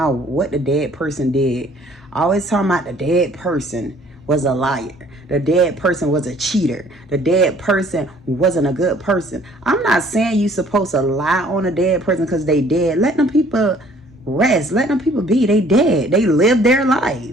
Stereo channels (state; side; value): normal; both; correlation 0.57